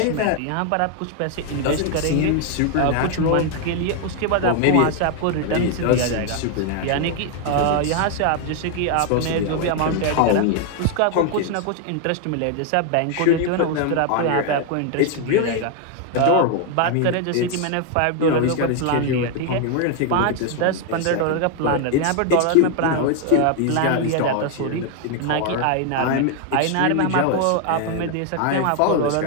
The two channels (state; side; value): different; both; correlation 0.00